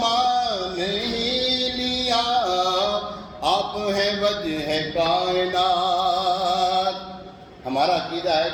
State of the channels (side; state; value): both; identical; correlation 1.00